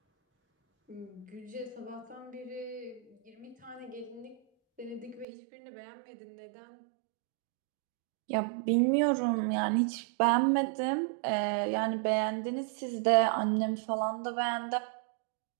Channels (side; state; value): left; drops out; at 5.2 s